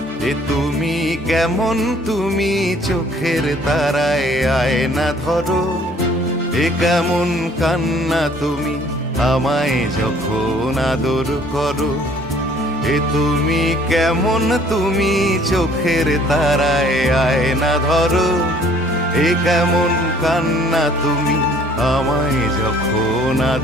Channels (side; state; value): both; normal; correlation 0.57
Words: এ তুমি কেমন, তুমি চোখের তারায় আয়না ধরো। এ কেমন কান্না তুমি আমায় যখন আদর করো। এ তুমি কেমন, তুমি চোখের তারায় আয়না ধরো। এ কেমন কান্না তুমি আমায় যখন